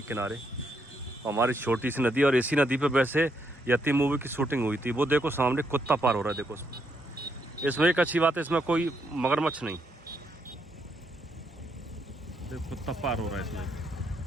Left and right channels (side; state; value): both; normal; correlation 0.77